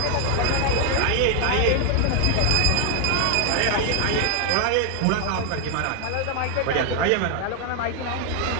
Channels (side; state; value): both; different; correlation 0.00